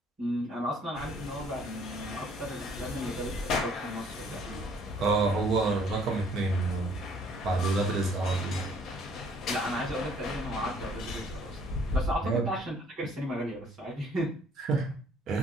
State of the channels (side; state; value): both; normal; correlation 0.60